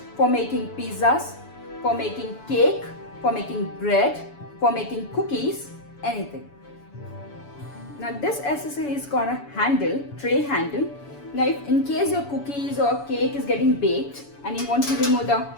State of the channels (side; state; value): right; late; 7.0 ms